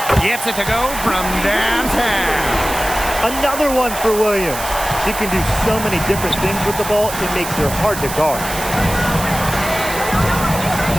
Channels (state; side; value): noise; right; hiss, 8 dB below the sound